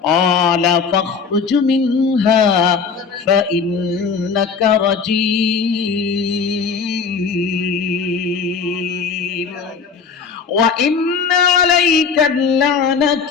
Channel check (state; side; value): quieter; right; 5.7 dB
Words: ক্বালা ফাখরুজ মিনহা ফাইন্নাকা রাজীম ওয়া ইন্না আলাইকা